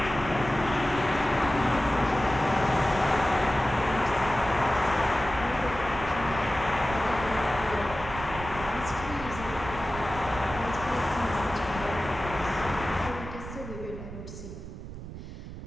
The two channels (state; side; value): noise; right; rumble, 11 dB below the sound